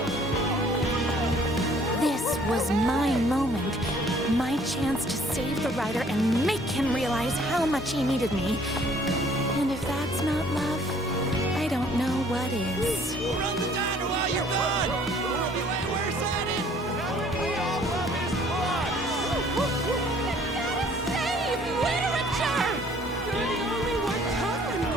This was my moment. My chance to save the rider and make him realize how much he needed me. And if that's not love, I don't know what is. Run the diner while you're gone! We'll be way worse at it! We all love his blood! Save literature! You're the only one tough and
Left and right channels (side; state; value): both; normal; correlation 0.58